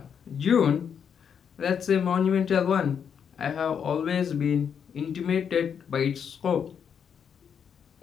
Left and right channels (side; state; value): right; quieter; 7.5 dB